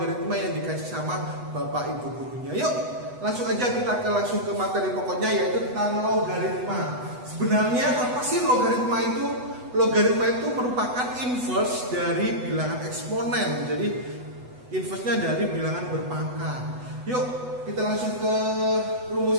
yang dikasih sama bapak ibu gurunya. Yuk langsung aja kita langsung ke materi pokoknya, yaitu tentang logaritma. Sebenarnya apa sih logaritma itu? Logaritma itu merupakan inverse dari bilangan eksponen. Jadi inverse-nya dari bilangan berpangkat. Yuk kita langsung ke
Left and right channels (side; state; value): left; late; 8.1 ms